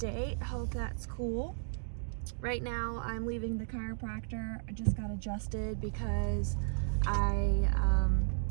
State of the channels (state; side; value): silent; left; digital silence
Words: Hope that's cool. Right now I'm leaving the chiropractor. I just got adjusted because I